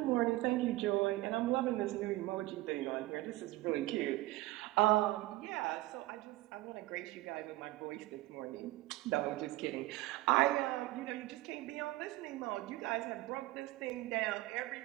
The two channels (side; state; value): left; quieter; 18.3 dB